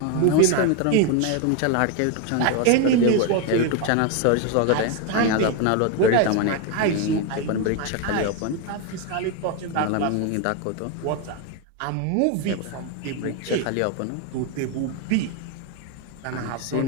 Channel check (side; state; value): both; different; correlation 0.02